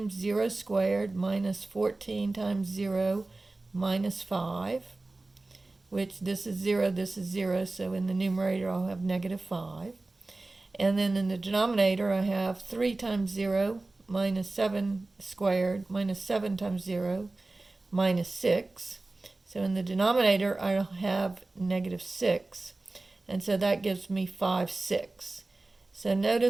0 squared minus 14 times 0 minus 5, which this is 0, so in the numerator I'll have negative 5. And then in the denominator I have 3 times 0 minus 7 squared minus 7 times 0 minus 6. So in the denominator I'll have negative 6, and so that gives me 5, 6. So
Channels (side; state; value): left; quieter; 3.1 dB